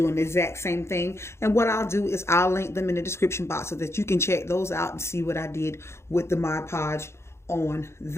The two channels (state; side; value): late; right; 0.13 ms